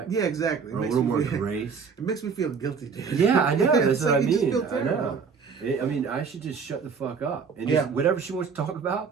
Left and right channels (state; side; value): quieter; left; 5.8 dB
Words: Yeah, exactly. Or a little more grace? It makes me feel guilty, dude. Yeah, I know. That's It's what like I you just mean. feel I terrible. know. I mean, I should just shut the fuck up. And Yeah. just whatever she wants to talk